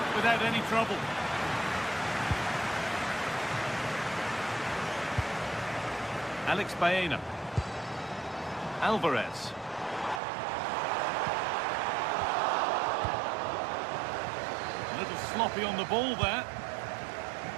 without any trouble. Alex Baena. Alvarez. A little sloppy on the ball there.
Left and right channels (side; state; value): left; drops out; at 10.2 s